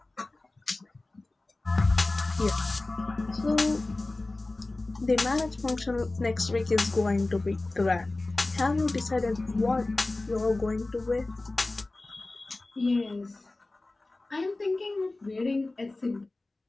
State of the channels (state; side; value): quieter; right; 3.0 dB